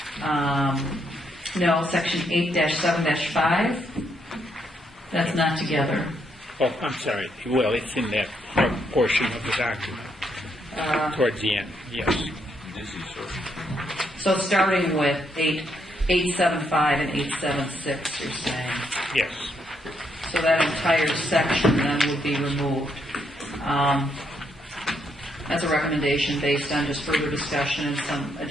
No, section 8-7-5. That's not together. Oh, I'm sorry. Well, it's in that front portion of the document, towards the end, yes. So starting with 875 and 876, you're saying? Yes. So that entire section then would be removed. As a recommendation based on just further discussion and some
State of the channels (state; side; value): normal; both; correlation 0.76